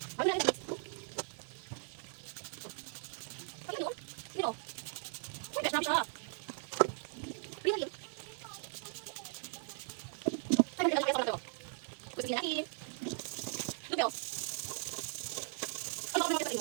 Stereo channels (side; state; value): left; silent; 52 dB below the other